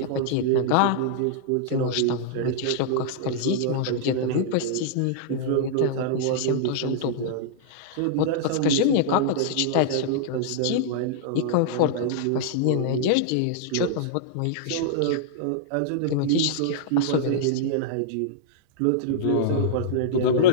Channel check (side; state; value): both; different; correlation -0.01